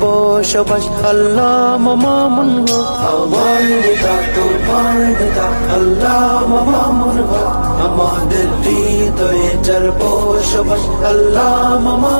বসবাস আল্লামা মামুনুল হক। আমার নেতা তোমার নেতা আল্লামা মামুনুল হক, আমাদের হৃদয়ে যার বসবাস আল্লামা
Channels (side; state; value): both; inverted; correlation -1.00